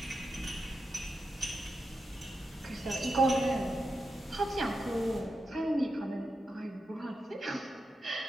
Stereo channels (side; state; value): both; normal; correlation 0.88